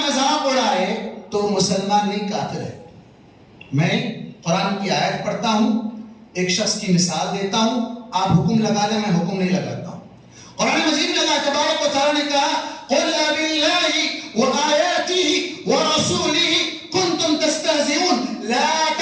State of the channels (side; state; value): both; identical; correlation 1.00